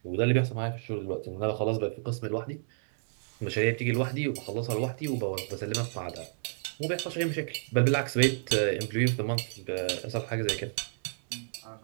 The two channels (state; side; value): silent; left; digital silence